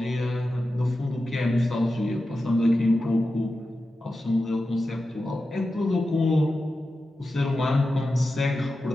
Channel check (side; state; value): both; normal; correlation 0.92